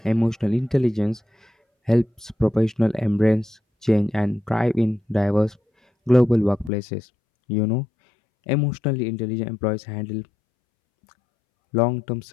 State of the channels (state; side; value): drops out; right; at 6.7 s